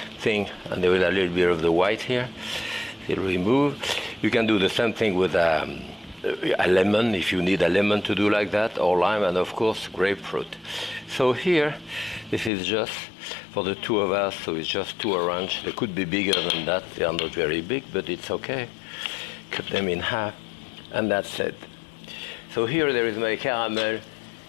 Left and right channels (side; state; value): right; drops out; at 12.5 s